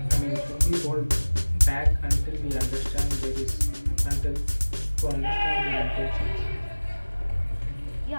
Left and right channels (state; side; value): inverted; both; correlation -1.00